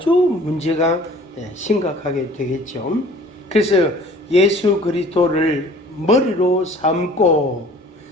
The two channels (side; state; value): both; normal; correlation 0.49